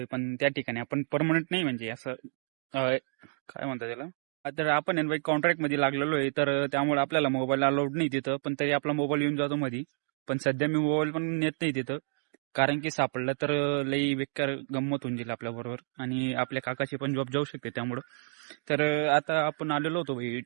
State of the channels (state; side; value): silent; left; 58 dB below the other